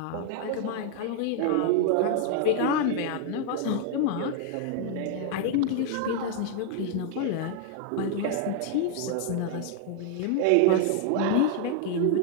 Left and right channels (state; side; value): different; both; correlation 0.00